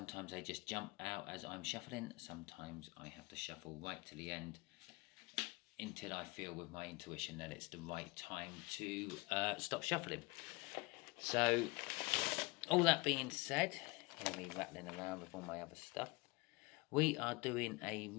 they just jump out as I'm shuffling. Sometimes I have to shuffle right to the end until I feel with my intuition that it's the right time to stop shuffling. So, all that being said, hear me rattling around with all my other stuff. We are doing a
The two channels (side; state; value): right; quieter; 25.5 dB